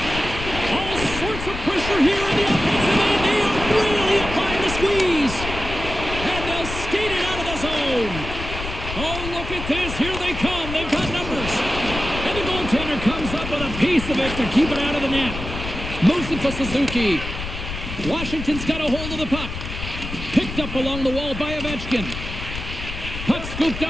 All sorts of pressure here in the offensive end. They are really applying the squeeze. And they'll skate it out of the zone. Oh, look at this. Here they come. They've got numbers. And the goaltender comes up with a piece of it to keep it out of the net. Moves it for Suzuki. Washington's got a hold of the puck. Picked up along the wall by Ovechkin. Puck scooped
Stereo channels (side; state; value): left; noise; rumble, 8 dB below the sound